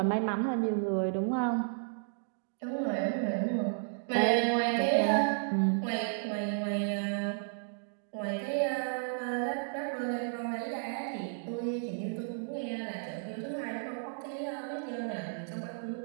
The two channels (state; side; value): silent; left; digital silence